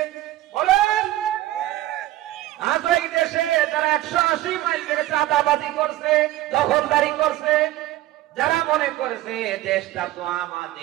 বলেন। আজ ওই দেশে তারা 180 মাইল বেগে চাঁদাবাজি করছে, দখলদারি করছে, যারা মনে করেছে দেশটা তো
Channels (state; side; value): quieter; left; 15.6 dB